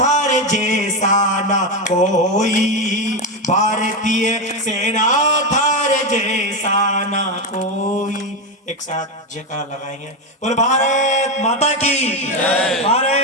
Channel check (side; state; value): both; normal; correlation 0.11